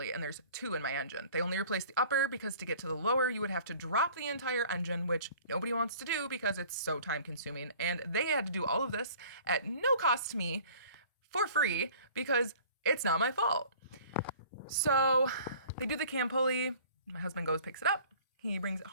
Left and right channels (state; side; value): inverted; both; correlation -0.49